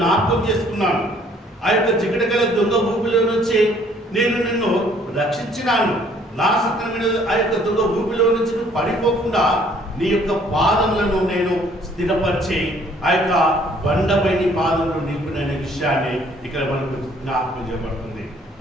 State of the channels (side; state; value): both; normal; correlation 0.60